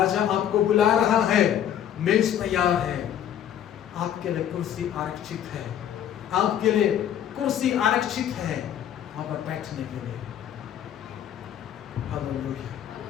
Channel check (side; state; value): right; quieter; 10.1 dB